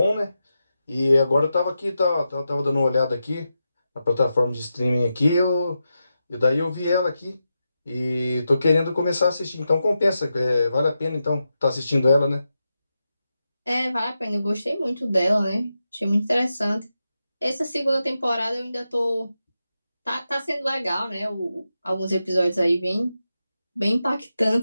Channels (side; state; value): both; inverted; correlation -0.89